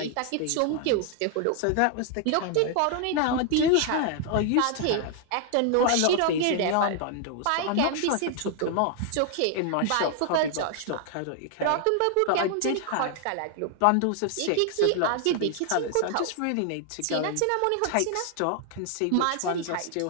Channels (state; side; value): different; both; correlation 0.00